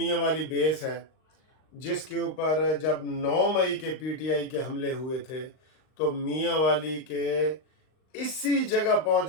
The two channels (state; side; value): late; right; 39 ms